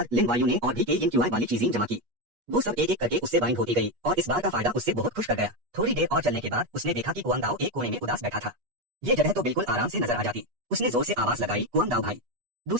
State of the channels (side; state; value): left; late; 8.3 ms